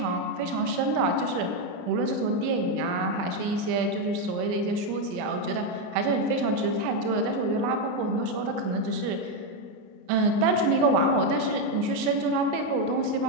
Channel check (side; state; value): left; late; 29 ms